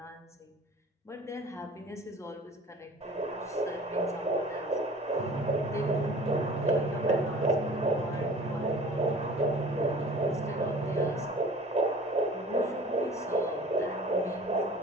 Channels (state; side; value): normal; both; correlation 0.45